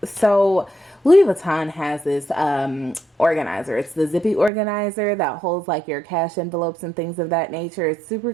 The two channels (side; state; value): left; drops out; at 4.5 s